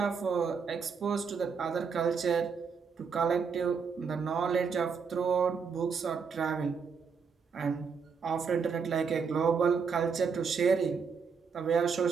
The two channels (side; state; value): left; quieter; 5.8 dB